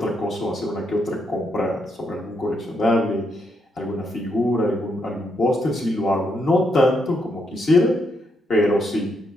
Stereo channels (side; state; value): both; normal; correlation 0.78